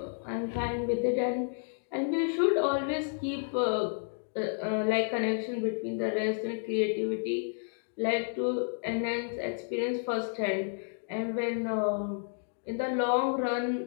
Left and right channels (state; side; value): silent; right; digital silence